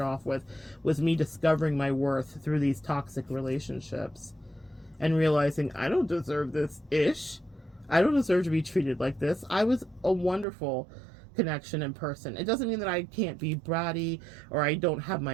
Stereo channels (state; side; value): drops out; left; at 10.5 s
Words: with, was me discovering my worth through these toxic relationships and realizing I don't deserve this ish. I don't deserve to be treated like this. I was a wonderful connection in person. It doesn't mean that I can't be bratty or I don't have